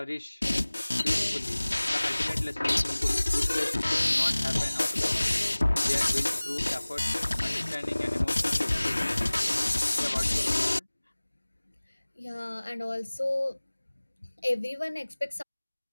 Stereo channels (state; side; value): inverted; both; correlation -1.00